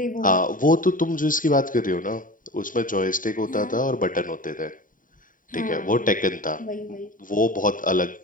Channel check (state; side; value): late; right; 0.39 ms